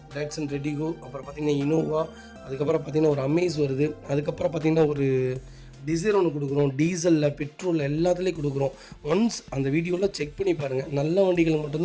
டாட்சன் ரெடிகோ, அப்புறம் பார்த்திங்கன்னா இனோவா, அதுக்கப்புறம் பார்த்திங்கன்னா ஒரு அமேஸ் வருது, அதுக்கப்புறம் பார்த்திங்கன்னா ஒரு டிசைர் ஒன்று கொடுக்குறோம். டீசலில், பெட்ரோலில் எல்லாத்துலேயும் கொடுக்குறோம். ஒன்ஸ் அந்த வீடியோவில் செக் பண்ணி பாருங்கள். நல்ல வண்டிகள்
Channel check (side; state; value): both; identical; correlation 1.00